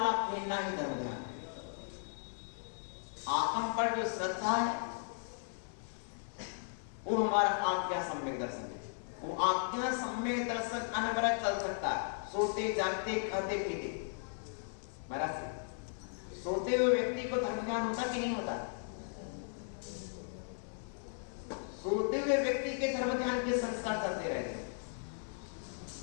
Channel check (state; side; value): silent; right; 53 dB below the other